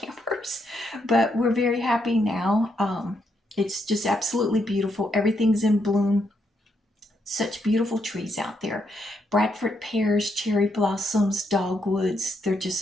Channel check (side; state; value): both; normal; correlation 0.78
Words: But we're very happy now. It's just absolutely beautiful. Everything's in bloom. Such beautiful trees out there. Bradford pears, cherry blossoms, dogwoods, they're just